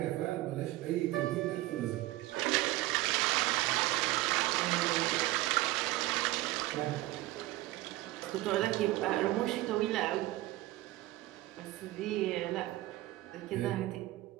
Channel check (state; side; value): quieter; left; 17.7 dB